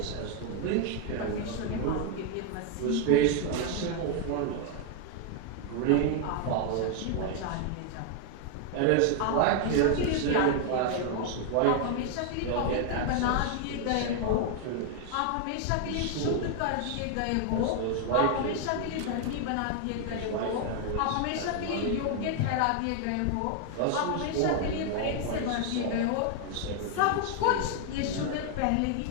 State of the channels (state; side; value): different; both; correlation 0.00